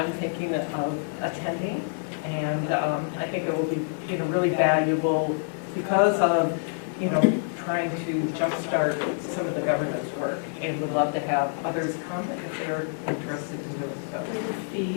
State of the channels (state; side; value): silent; right; 56 dB below the other